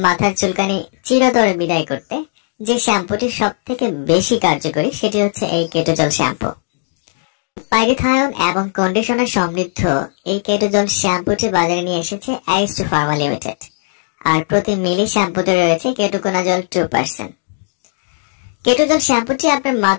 মাথার চুলকানি চিরতরে বিদায় করতে যে শ্যাম্পুটি সব থেকে বেশি কার্যকরী সেটি হচ্ছে এই কেটোজল শ্যাম্পু। পাইরিথায়ন এবং কন্ডিশনার সমৃদ্ধ এই কেটোজল শ্যাম্পুটি বাজারে নিয়ে এসেছে অ্যারিস্টো ফার্মা লিমিটেড। আর প্রতি মিলি শ্যাম্পুতে রয়েছে কেটোকোনাজল 2%। কেটোজল শ্যাম্পুটি আপনার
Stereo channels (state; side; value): silent; right; digital silence